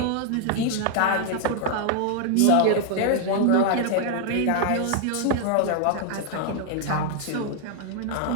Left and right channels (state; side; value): different; both; correlation 0.00